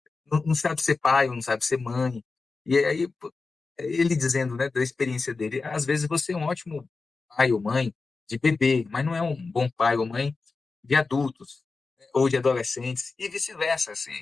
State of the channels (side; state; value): right; quieter; 4.1 dB